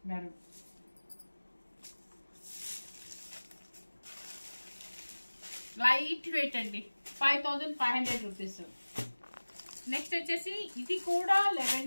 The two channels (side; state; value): both; inverted; correlation -1.00